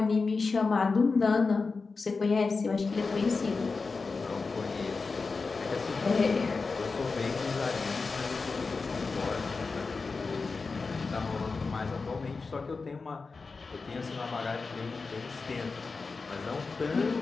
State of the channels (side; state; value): right; quieter; 4.3 dB